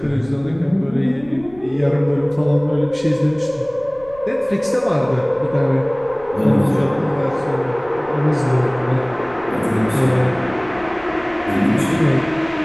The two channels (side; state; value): left; noise; rumble, 23 dB below the sound